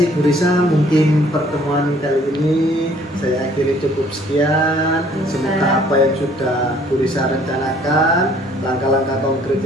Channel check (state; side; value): normal; both; correlation 0.59